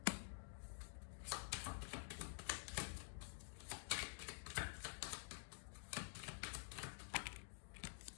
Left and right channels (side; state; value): right; silent; digital silence